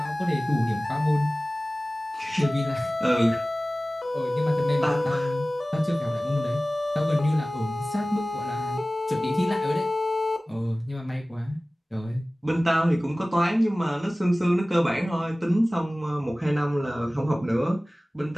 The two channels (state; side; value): normal; both; correlation 0.98